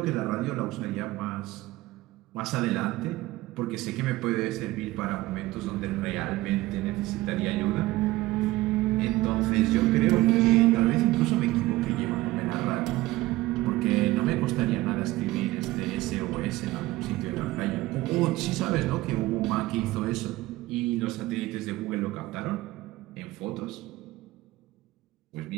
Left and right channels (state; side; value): quieter; left; 18.1 dB